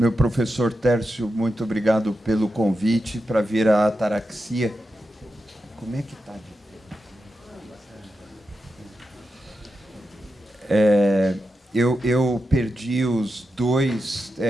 professor Tércio, muito obrigado pelo convite para vir à Ataraxia. Como é que está? Eu perdi os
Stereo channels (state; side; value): normal; both; correlation 0.89